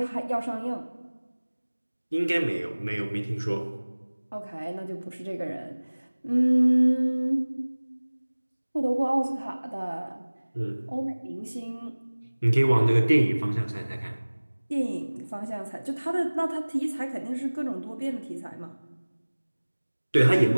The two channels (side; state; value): both; inverted; correlation -1.00